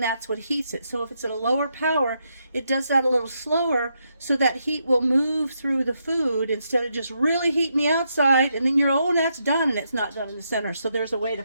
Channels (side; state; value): both; inverted; correlation -0.80